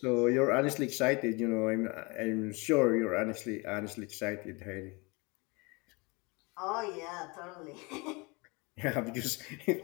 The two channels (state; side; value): quieter; right; 27.7 dB